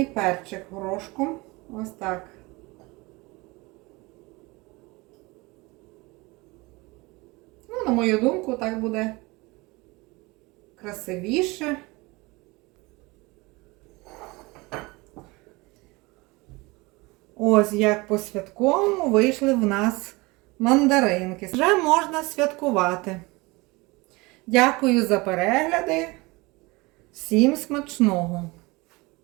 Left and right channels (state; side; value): quieter; left; 24.0 dB